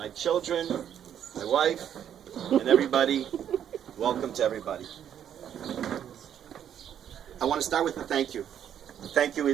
children, my wife, and everybody. Welcome to everybody. I want to start with a thank you. The thank you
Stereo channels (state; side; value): quieter; left; 9.5 dB